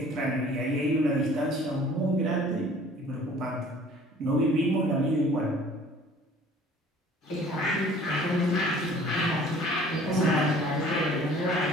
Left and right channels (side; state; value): both; normal; correlation 0.51